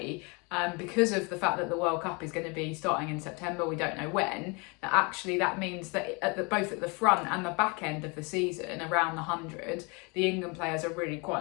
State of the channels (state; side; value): quieter; right; 30.2 dB